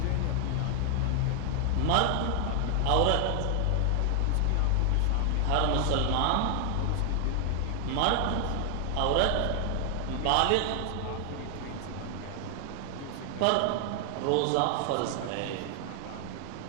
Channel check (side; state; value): both; different; correlation 0.00